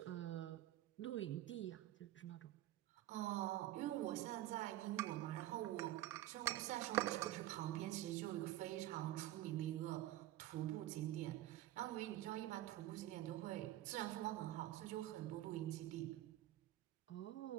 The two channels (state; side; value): quieter; left; 14.7 dB